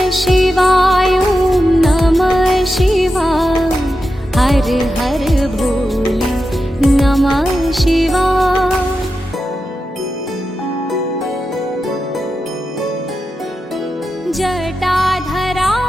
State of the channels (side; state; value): both; normal; correlation 0.90